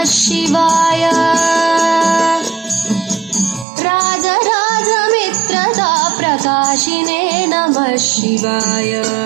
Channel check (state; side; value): drops out; left; at 3.7 s